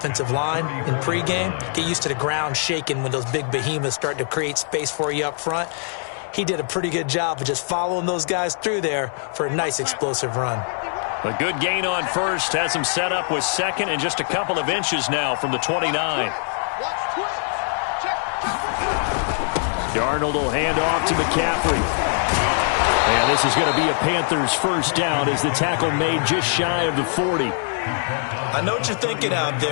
line in pregame. Get used to the ground shaking when those big behemoths start to create space for you up front. He did a pretty good job of just following those guys through there for a nice explosive run. A good gain on first has him set up with second and just a couple of inches now from the 29. Darnold will hand off to McCaffrey. And this is going to be a Panthers first down as the tackle made just shy of the 40. I know what you're thinking out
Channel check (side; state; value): right; silent; 61 dB below the other